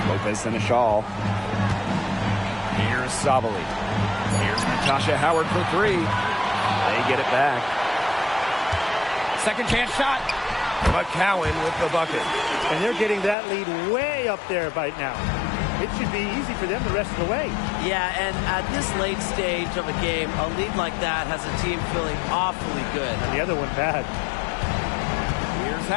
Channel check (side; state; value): right; drops out; at 13.4 s